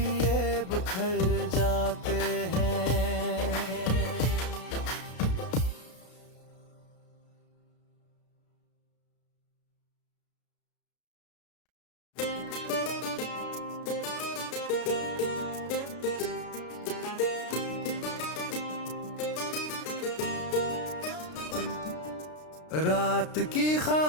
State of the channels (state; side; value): late; right; 33 ms